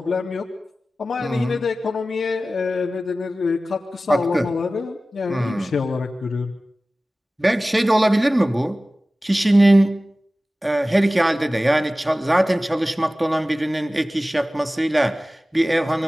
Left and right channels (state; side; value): normal; both; correlation 0.96